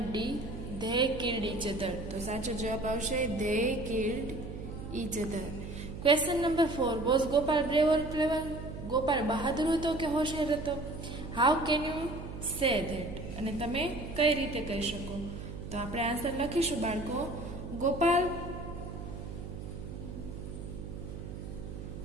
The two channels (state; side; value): noise; right; hum, 9 dB below the sound